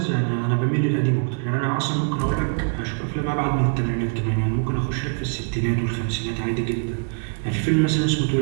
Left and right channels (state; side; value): quieter; left; 37.5 dB